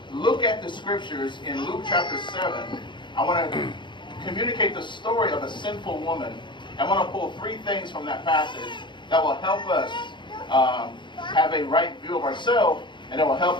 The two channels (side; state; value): right; late; 0.23 ms